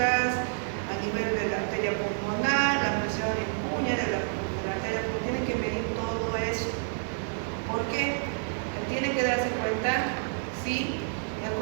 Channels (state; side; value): silent; left; digital silence